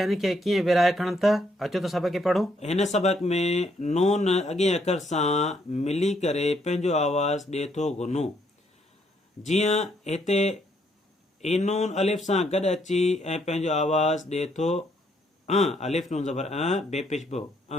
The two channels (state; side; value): normal; both; correlation 0.72